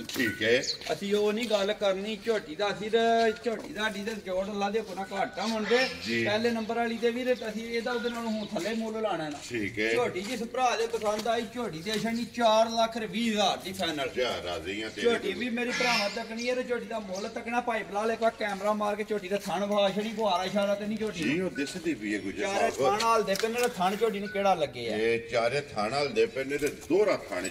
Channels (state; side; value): identical; both; correlation 1.00